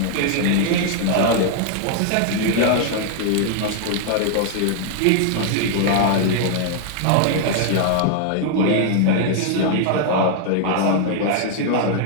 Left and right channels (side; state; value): both; different; correlation -0.01